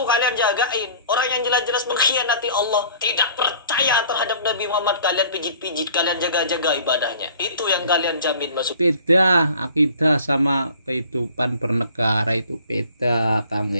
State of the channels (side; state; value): both; inverted; correlation -0.50